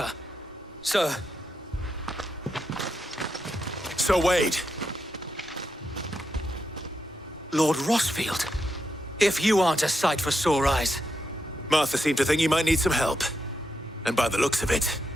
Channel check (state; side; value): normal; both; correlation 0.84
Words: Sir. Sir Wade! Lord Rosfield. If you aren't a sight for sore eyes. Martha seemed to think you might need some help. And by the looks of it...